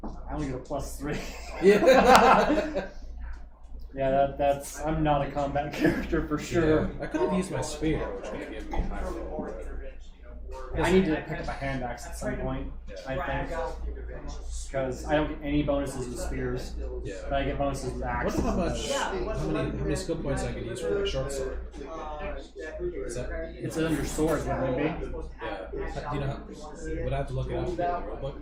I only get a +3. Yeah. Yeah, that's. I'm not a combat character for sure. Yeah. I could have used my spear, which would have given me higher roll. I need to pick up a hand axe at some point, I think. Because I don't get any bonuses with spears, Yeah. but I get bonuses with axes. Wonder how many skill points I could use for my short sword. Is that, It's under swords, wouldn't it be? yeah. Do you know how, would I have to look it up in the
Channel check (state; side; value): identical; both; correlation 1.00